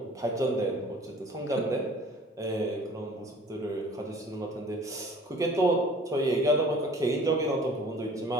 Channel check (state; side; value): normal; both; correlation 0.49